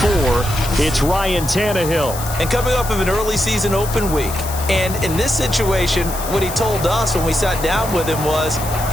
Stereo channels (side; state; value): left; noise; hiss, 10 dB below the sound